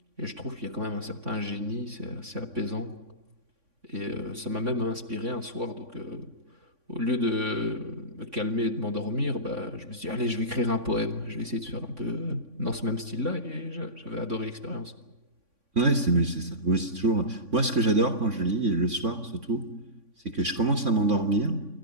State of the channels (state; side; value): late; left; 3.6 ms